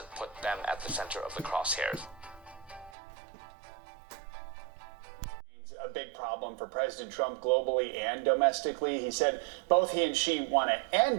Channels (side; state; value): left; drops out; at 2.9 s